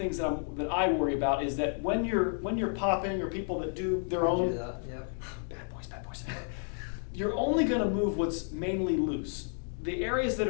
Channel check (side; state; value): right; silent; 57 dB below the other